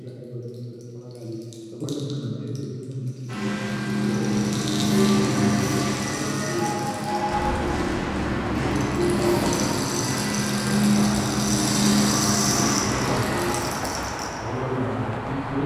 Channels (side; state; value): both; identical; correlation 1.00